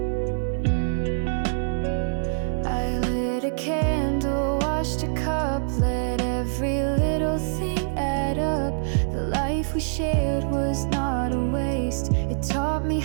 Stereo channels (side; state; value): left; silent; digital silence